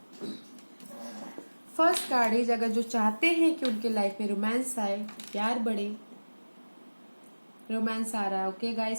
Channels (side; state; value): both; inverted; correlation -1.00